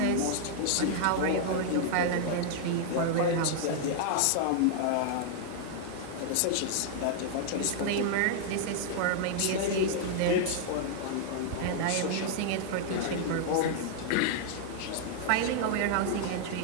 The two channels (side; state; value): both; different; correlation -0.01